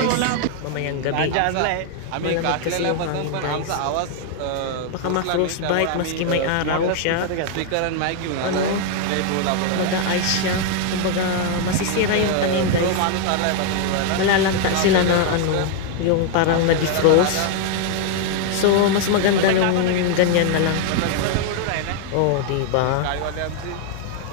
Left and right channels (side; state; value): both; different; correlation 0.00